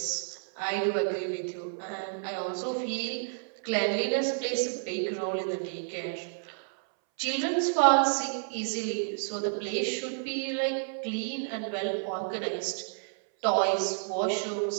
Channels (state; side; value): silent; left; 58 dB below the other